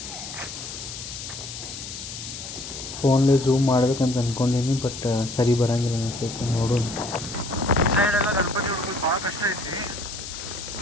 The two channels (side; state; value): left; noise; hiss, 9 dB below the sound